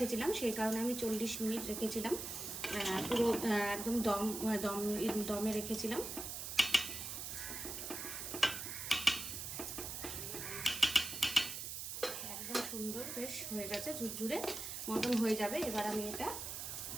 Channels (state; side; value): noise; right; hiss, 6 dB below the sound